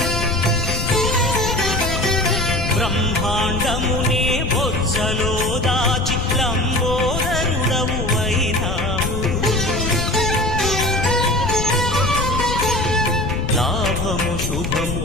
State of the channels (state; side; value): noise; left; rumble, 2 dB below the sound